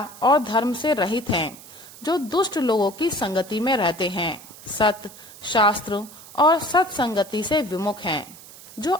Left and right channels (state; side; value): noise; right; hiss, 18 dB below the sound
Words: और धर्म से रहित हैं, जो दुष्ट लोगों की संगति में रहते हैं, सत्य शास्त्र और सत्संगति से विमुख हैं, जो